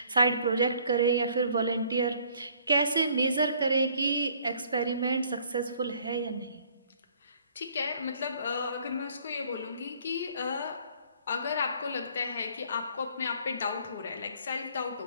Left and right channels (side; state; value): both; inverted; correlation -0.60